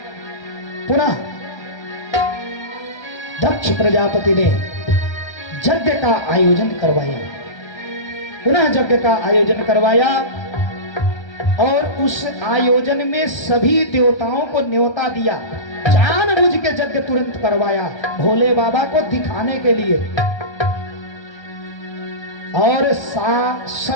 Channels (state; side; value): late; right; 1.3 ms